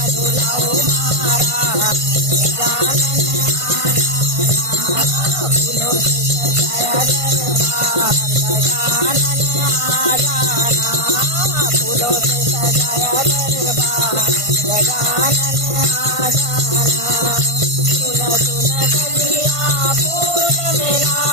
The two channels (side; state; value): left; late; 1.5 ms